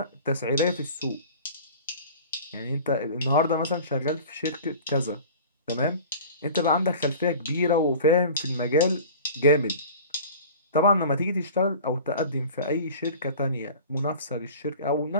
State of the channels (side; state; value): both; inverted; correlation -0.41